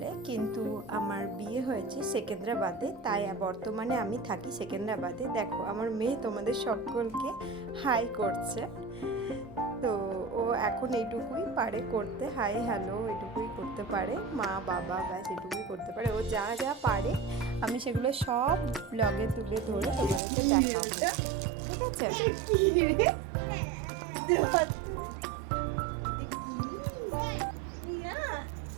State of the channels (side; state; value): left; drops out; at 20.2 s